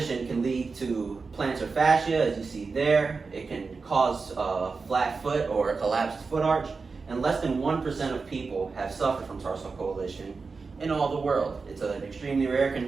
can lead to plantar fascia, as you see there. It can cause a flat foot or a collapsed foot arch, and less than 1% of people have suffered from tarsal coalition in all the world. It's an extremely rare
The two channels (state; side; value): quieter; left; 4.5 dB